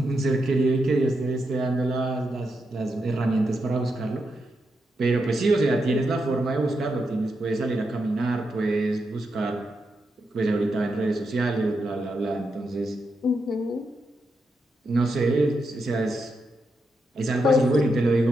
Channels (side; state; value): both; normal; correlation 0.84